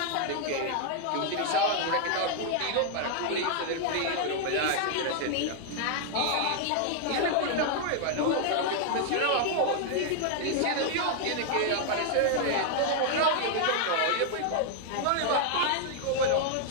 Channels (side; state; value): both; different; correlation 0.00